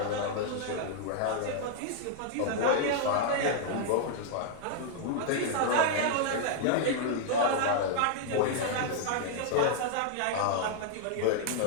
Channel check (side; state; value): both; different; correlation -0.01